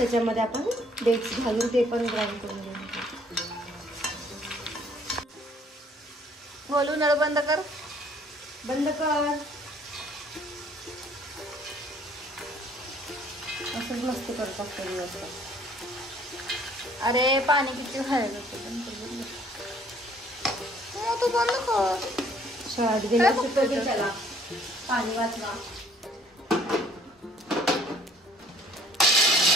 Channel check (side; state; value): both; normal; correlation 0.58